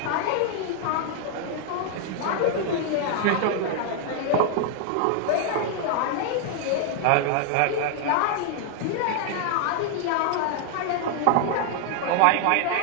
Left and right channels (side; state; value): both; different; correlation 0.00